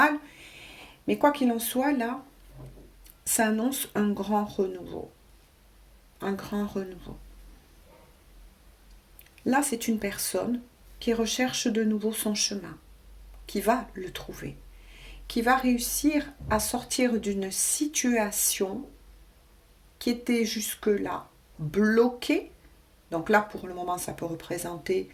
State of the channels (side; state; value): both; identical; correlation 1.00